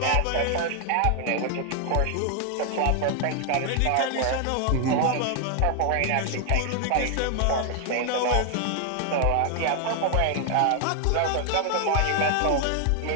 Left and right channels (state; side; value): different; both; correlation 0.00